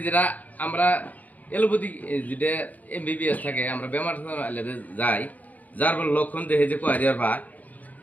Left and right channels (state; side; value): late; right; 0.077 ms